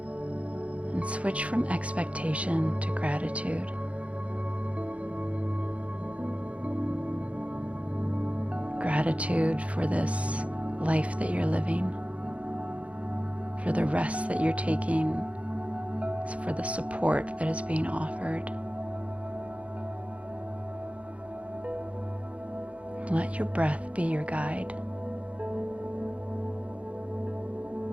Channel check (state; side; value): late; left; 0.064 ms